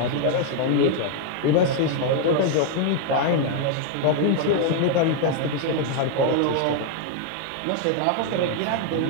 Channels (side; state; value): both; different; correlation 0.00